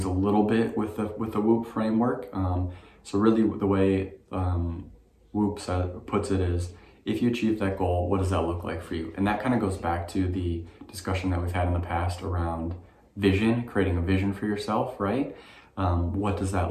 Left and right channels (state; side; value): identical; both; correlation 1.00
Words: a little bit with the WOOP framework. So really the way WOOP puts it is, if you achieve that goal, what does that look like for you? And that kind of goes back to the discussion that we've had in the past around vision, creating a vision for yourself, right? What does